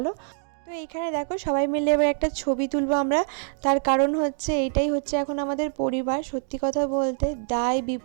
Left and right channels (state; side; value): silent; left; 62 dB below the other